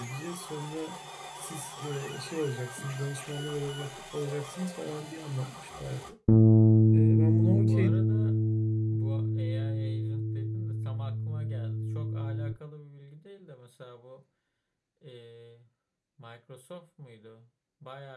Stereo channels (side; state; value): both; identical; correlation 1.00